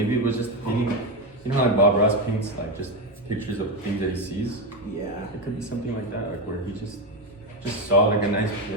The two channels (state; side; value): normal; both; correlation 0.11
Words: it was just a painting. You know how like Bob Ross paints like just pictures of things that he sees? Yeah. It could be something like that, like where he just saw like a nice